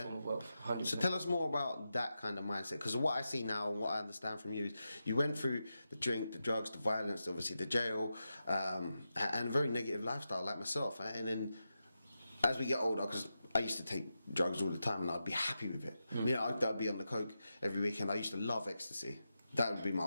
form of wealth. 100%. So tell us more about that kind of mindset, because what I see now and what I understand from you is you went through the drink, the drugs, the violence, obviously the jail, and a very negative lifestyle like myself. And then as we get older, because I used to take drugs all the time and I'd be happy with it. I'd be on the coke every weekend. I used to love ecstasy. That would be my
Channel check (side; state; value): both; inverted; correlation -0.89